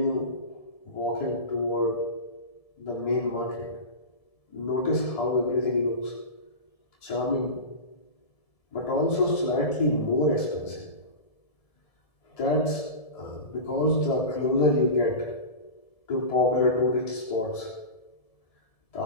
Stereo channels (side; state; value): right; late; 1.7 ms